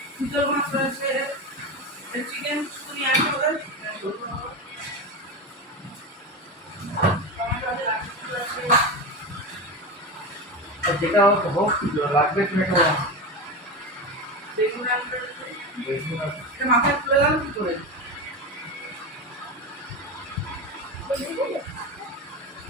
চিতল মাছ রয়েছে, চিকেন শুনি আছে ওদের, টমেটো আছে, গাঠি কচু আছে, আর যেটা হোক লাগবে তুমি একটা বেগুন আনবে, বেগুন আছে। এটা মাথায় তুলে গেল কি করে?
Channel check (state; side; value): normal; both; correlation 0.21